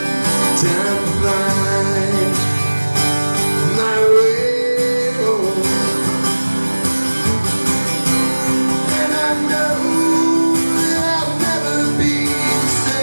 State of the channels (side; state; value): both; inverted; correlation -1.00